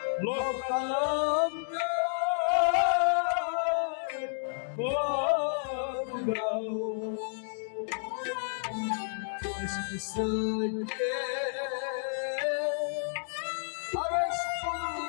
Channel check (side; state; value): right; silent; digital silence